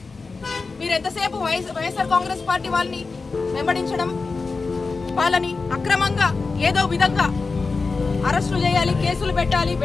మీరు ఎంతసేపు వైఎస్ఆర్ కాంగ్రెస్ పార్టీ వాళ్ళని వెంబడించడం, వాళ్ళని అక్రమంగా ఏదో విధంగా అరెస్టులు చేయాలి, కేసులు పెట్టాలి,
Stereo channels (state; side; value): quieter; right; 4.2 dB